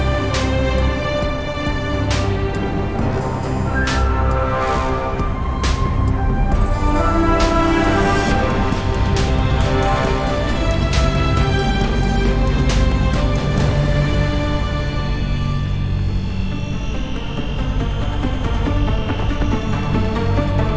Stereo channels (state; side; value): identical; both; correlation 1.00